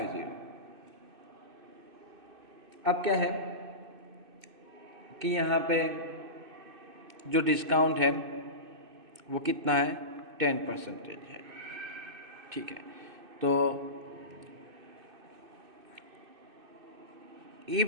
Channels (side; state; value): left; late; 2.6 ms